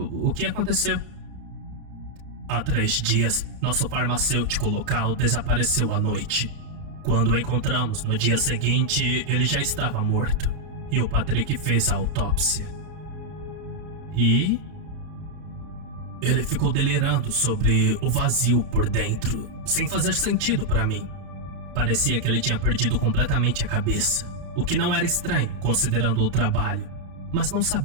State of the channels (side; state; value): left; late; 32 ms